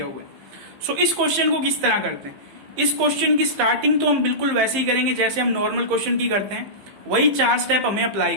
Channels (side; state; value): left; late; 15 ms